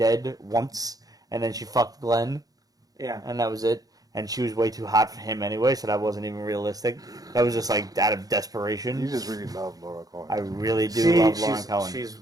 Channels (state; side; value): late; left; 0.18 ms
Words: once, and then she fucked Glenn, Yeah. and that was it. And she was way too hot for him anyway, so that wasn't even realistic. That was just like out of desperation. You just really love Laura Cohen. I really do love Lauren Cohen. She's